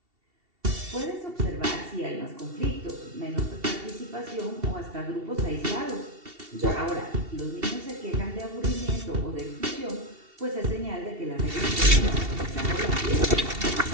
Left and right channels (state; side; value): late; left; 2.7 ms